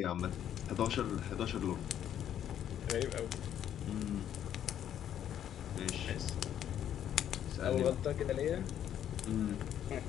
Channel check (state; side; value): quieter; right; 10.2 dB